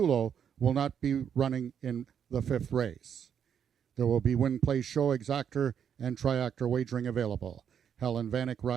will not be running in the 5th race. There will be win, play, show, exactor, and triactor wagering available. Helen Vanek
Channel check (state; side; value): quieter; left; 8.2 dB